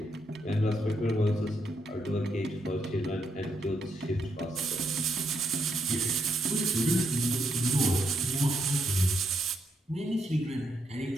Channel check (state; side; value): normal; both; correlation 0.77